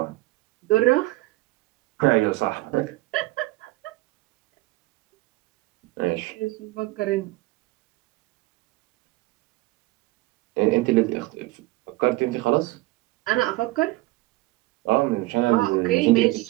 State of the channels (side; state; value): left; quieter; 20.1 dB